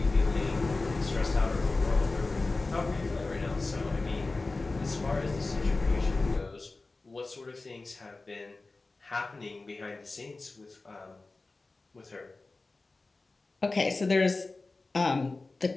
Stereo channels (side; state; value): right; quieter; 3.4 dB